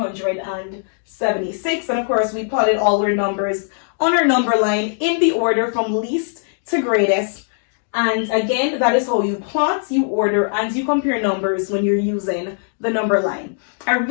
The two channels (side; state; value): right; silent; digital silence